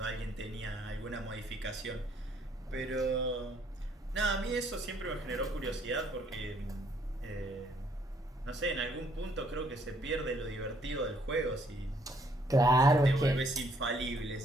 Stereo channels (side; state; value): both; normal; correlation 0.66